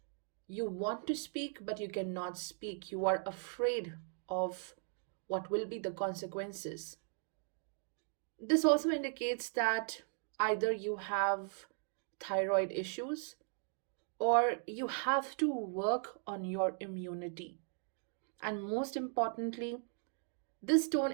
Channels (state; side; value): silent; left; 52 dB below the other